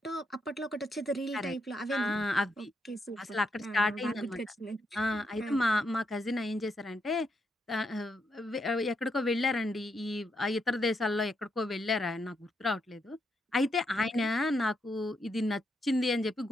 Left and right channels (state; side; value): normal; both; correlation 0.80